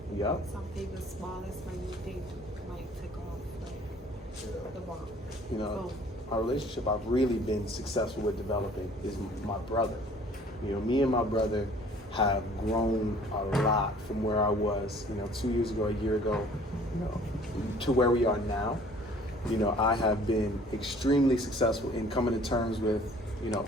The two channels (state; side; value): normal; both; correlation 0.53